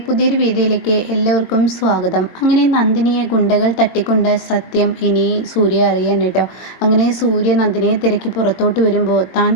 പുതിയൊരു വീഡിയോയിലേക്ക് എല്ലാവർക്കും സ്വാഗതം. അങ്ങനെ നന്ദിനിയെ ഗുണ്ടകൾ തട്ടിക്കൊണ്ട് സത്യം ഇനി സൂര്യ അറിയാൻ കേട്ടോ. അങ്ങനെ സൂര്യ നന്ദിനിയെ തിരക്കി പുറത്തോട്ട് വരുമ്പോൾ താൻ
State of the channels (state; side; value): late; right; 22 ms